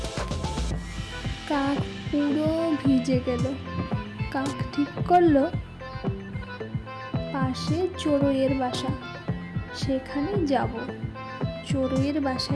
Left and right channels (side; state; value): both; identical; correlation 1.00